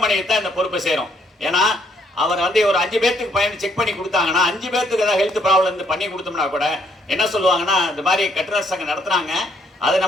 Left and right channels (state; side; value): normal; both; correlation 0.69